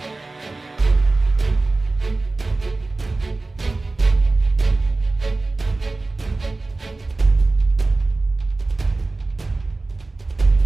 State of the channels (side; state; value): left; quieter; 3.3 dB